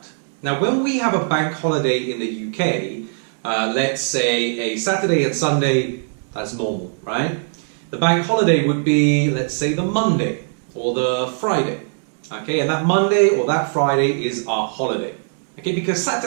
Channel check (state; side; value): silent; left; 65 dB below the other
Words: Now, when we have a bank holiday in the UK, let's say a Saturday and Sunday, that's normal, right? The bank holiday would be, let's say, the Monday or the Friday. Okay, and that Monday or that Friday is our holiday. Okay, because